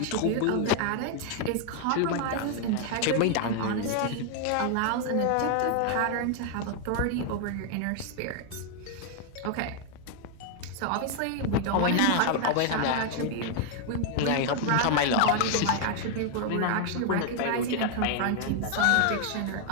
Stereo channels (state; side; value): different; both; correlation 0.00